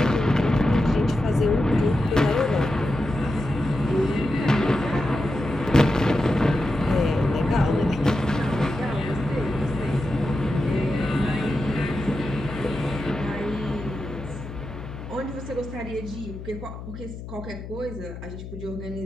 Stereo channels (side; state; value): left; noise; hum, 11 dB below the sound